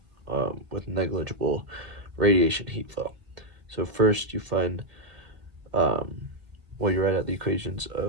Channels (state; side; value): late; left; 2.0 ms